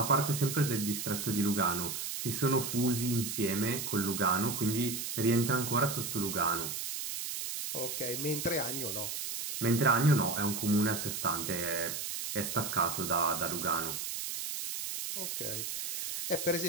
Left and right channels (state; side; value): noise; right; hiss, 4 dB below the sound